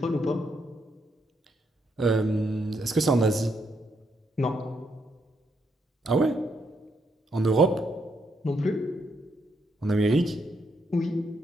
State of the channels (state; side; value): normal; both; correlation 0.77